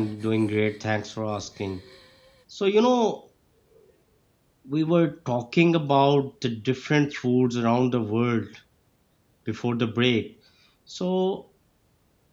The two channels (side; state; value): both; identical; correlation 1.00